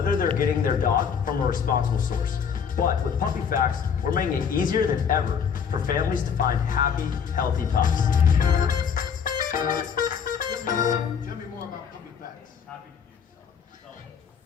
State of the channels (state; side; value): quieter; right; 7.0 dB